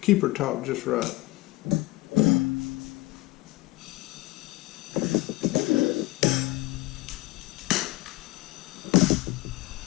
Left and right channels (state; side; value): quieter; right; 19.2 dB